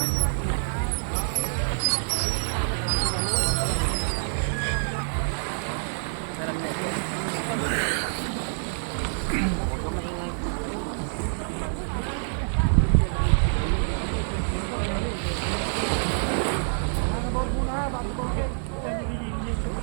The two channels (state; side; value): silent; left; 60 dB below the other